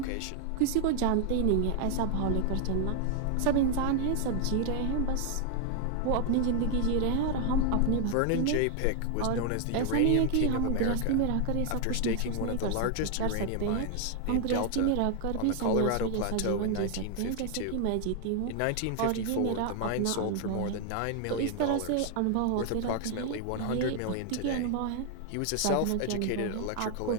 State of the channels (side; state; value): both; different; correlation 0.00